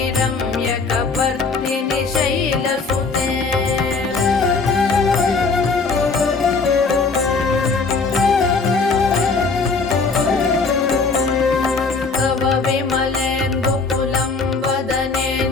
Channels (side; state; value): right; quieter; 4.3 dB